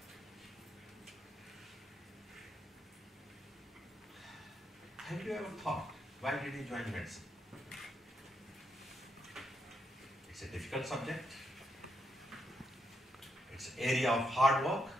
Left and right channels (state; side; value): normal; both; correlation 0.80